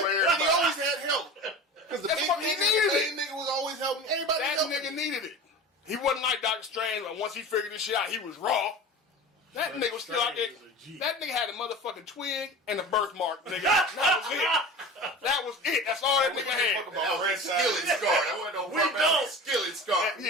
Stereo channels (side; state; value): both; normal; correlation 0.34